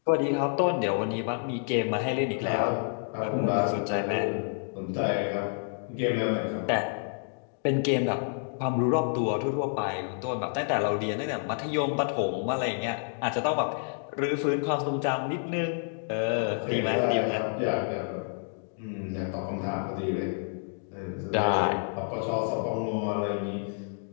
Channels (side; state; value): right; silent; 59 dB below the other